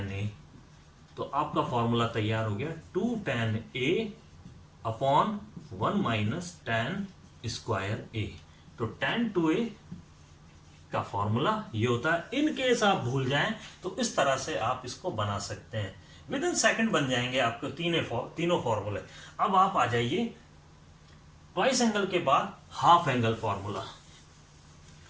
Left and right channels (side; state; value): both; identical; correlation 1.00